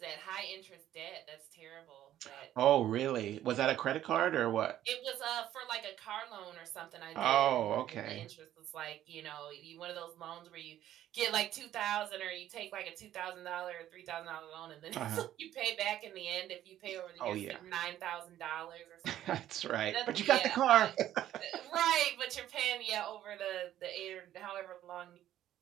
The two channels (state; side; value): quieter; left; 12.3 dB